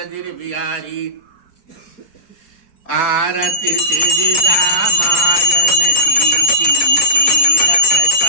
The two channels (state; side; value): late; right; 4.6 ms